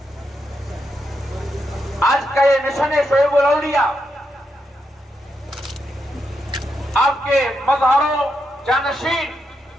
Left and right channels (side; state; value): both; normal; correlation 0.83